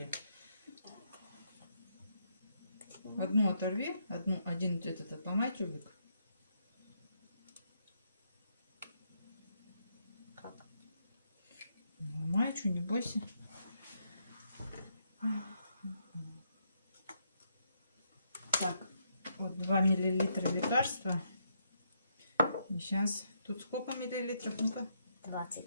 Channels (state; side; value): inverted; both; correlation -0.76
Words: Одну оторви, один этот отломай тюбик. Как? Ломай, что, не бойся. Так, вот 2 миллилитра лекарства. И сейчас, тут сколько миллилитров? Ну-ка. 20.